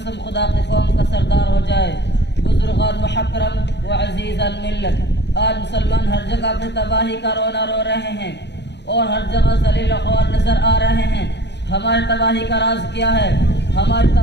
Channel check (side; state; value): right; late; 0.50 ms